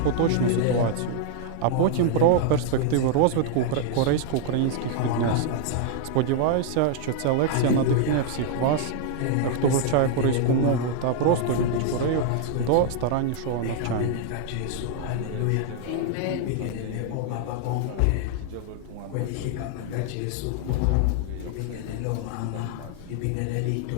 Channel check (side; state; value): both; different; correlation 0.00